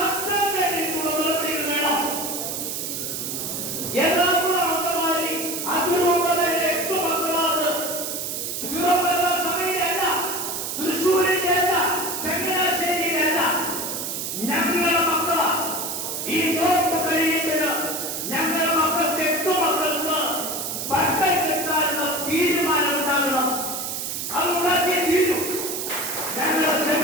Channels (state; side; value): noise; right; hiss, 4 dB below the sound